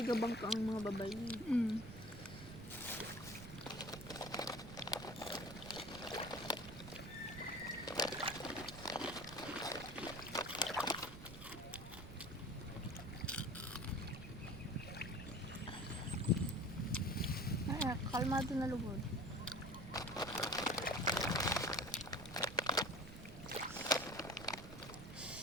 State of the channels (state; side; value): noise; right; rumble, 12 dB below the sound